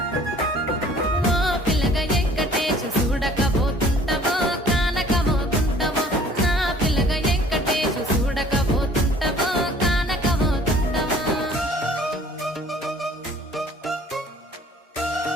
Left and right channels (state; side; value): normal; both; correlation 0.53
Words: ఓ పిల్లగా వెంకటేశు చూడక పోతుంటావో కానక పోతుంటావో నా పిల్లగా వెంకటేశు చూడక పోతుంటావో కానక పోతుంటావో